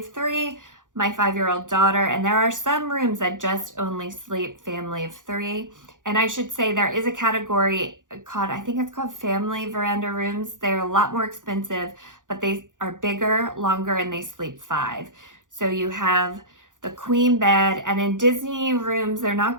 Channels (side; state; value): left; late; 0.88 ms